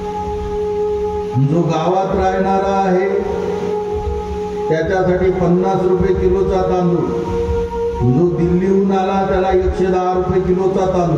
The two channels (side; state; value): both; identical; correlation 1.00